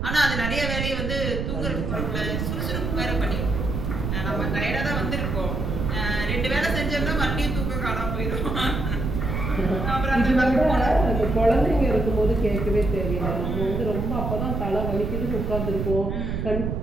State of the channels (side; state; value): right; noise; rumble, 2 dB below the sound